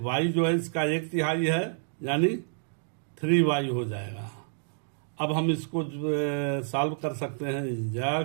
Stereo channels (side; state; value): left; silent; digital silence